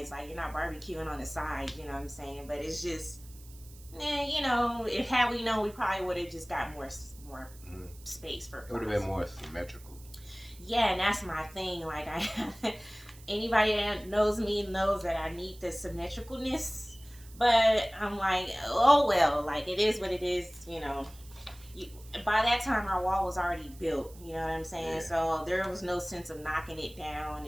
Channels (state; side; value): noise; right; hiss, 22 dB below the sound